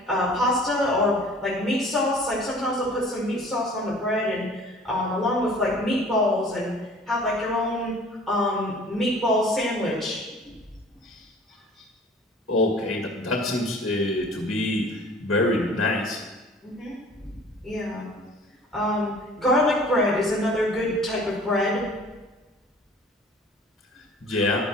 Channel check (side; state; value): both; normal; correlation 0.48